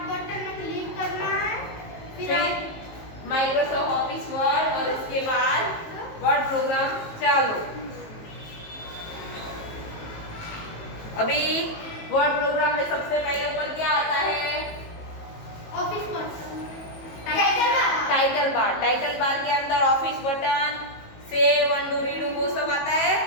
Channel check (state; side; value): late; right; 19 ms